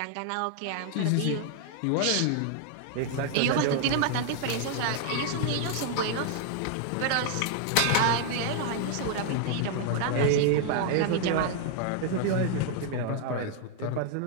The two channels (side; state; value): both; different; correlation 0.00